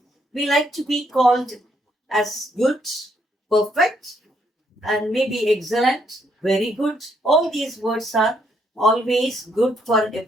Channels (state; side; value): normal; both; correlation 0.73